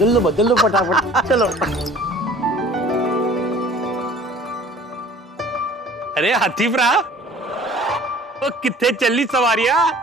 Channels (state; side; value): normal; both; correlation 0.49